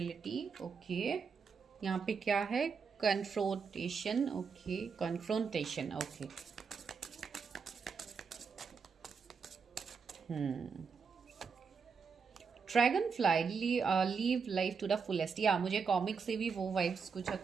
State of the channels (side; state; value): left; quieter; 5.7 dB